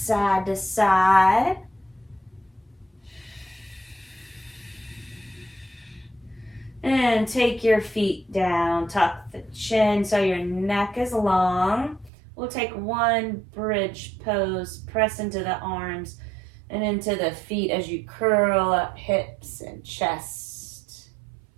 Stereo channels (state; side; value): drops out; left; at 12.1 s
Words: to side. And take your feet down. Tuck the chin so your neck is long. We'll take one bridge pose. Press into the arms and into the feet as you curl up hips and chest.